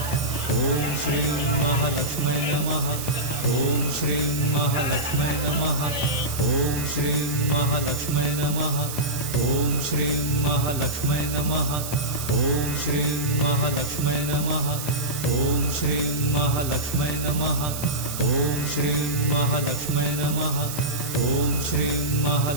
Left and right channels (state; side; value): noise; right; hiss, 7 dB below the sound